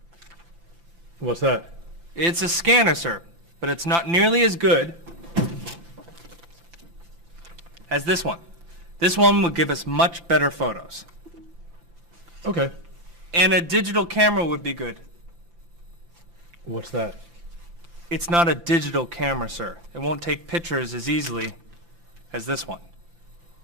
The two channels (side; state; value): left; late; 5.9 ms